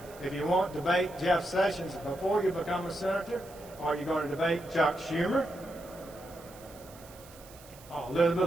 If you want to debate Jeff Sessions before you become a senator, are you going to debate Chuck Schumer,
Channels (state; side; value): noise; right; hiss, 21 dB below the sound